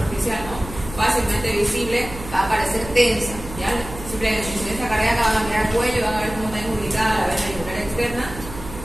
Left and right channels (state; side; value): noise; right; hum, 12 dB below the sound